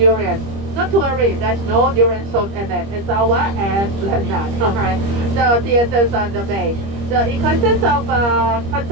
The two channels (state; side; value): late; left; 25 ms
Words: Not to worry, there's no durian sold in it. It's our esplanade, alright? The theaters on the bay. So it consists of a